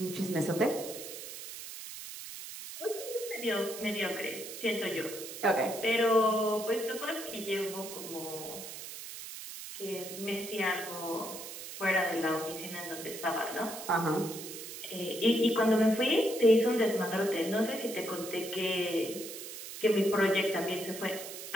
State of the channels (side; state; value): right; noise; hiss, 10 dB below the sound